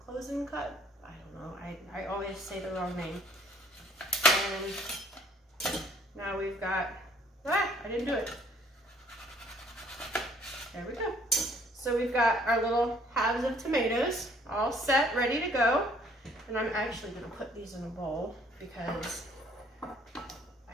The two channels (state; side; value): normal; both; correlation 0.60